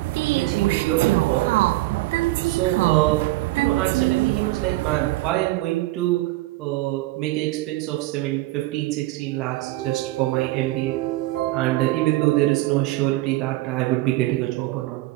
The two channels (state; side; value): quieter; left; 18.6 dB